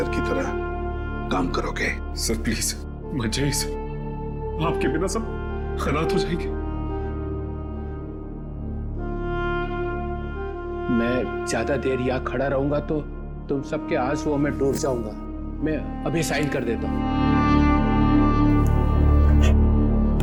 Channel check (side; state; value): both; identical; correlation 1.00